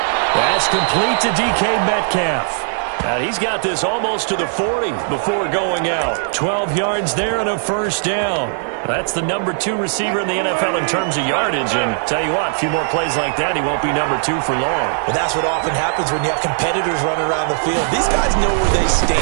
That's complete to DK Metcalf. He's got this almost to the 40 before going out. 12 yards there and a first down. That's the number 2 receiver in the NFL in terms of yardage. And tell you what, a few more plays like that, he won't be number 2 for long. Well, that's what often happens when you have competitors running around the field. These guys know where they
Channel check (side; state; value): left; silent; digital silence